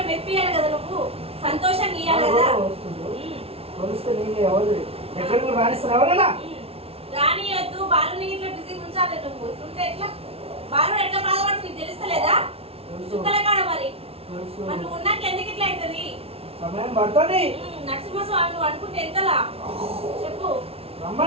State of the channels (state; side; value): late; left; 0.28 ms